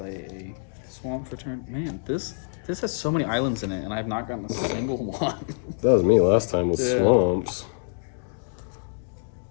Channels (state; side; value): silent; right; digital silence